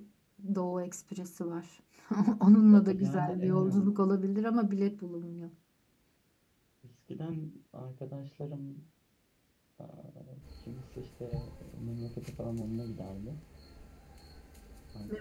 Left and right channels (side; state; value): both; identical; correlation 1.00